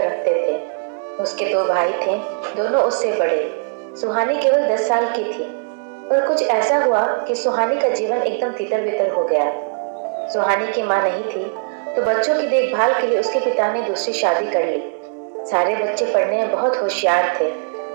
रखते थे। उसके 2 भाई थे, दोनों उससे बड़े। सुहानी केवल 10 साल की थी, पर कुछ ऐसा हुआ कि सुहानी का जीवन एकदम तितर बितर हो गया। सुहानी की माँ नहीं थी, तो बच्चों की देखभाल के लिए उसके पिता ने दूसरी शादी कर ली। सारे बच्चे पढ़ने में बहुत होशियार थे,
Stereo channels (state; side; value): silent; left; 66 dB below the other